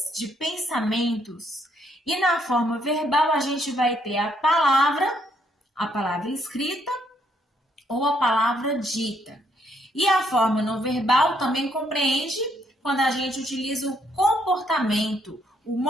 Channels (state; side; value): normal; both; correlation 0.72